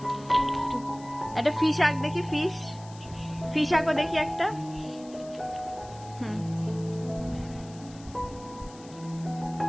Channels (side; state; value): left; noise; hiss, 21 dB below the sound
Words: একটা ফিশ আঁক দেখি, ফিশ আঁকো দেখি একটা।